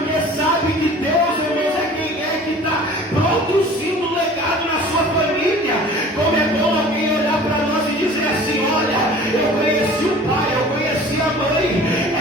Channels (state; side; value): normal; both; correlation 0.45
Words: sabe que Deus, irmãos, é quem é que está produzindo legado na sua família. Como é bom alguém olhar para nós e dizer assim: